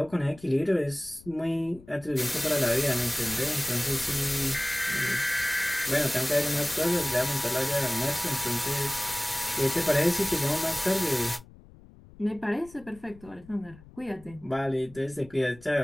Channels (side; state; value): left; noise; rumble, 22 dB below the sound